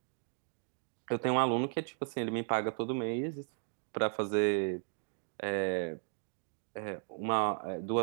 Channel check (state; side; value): silent; left; 54 dB below the other